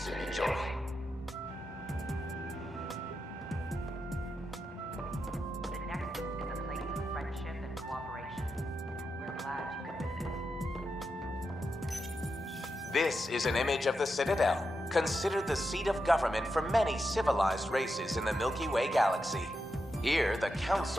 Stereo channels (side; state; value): both; normal; correlation 0.87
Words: enjoy. The Nexus is a place of friendship and cooperation. We're glad you could visit. This is an image of the Citadel, considered the seat of government for many civilized races in the Milky Way galaxy. Here, the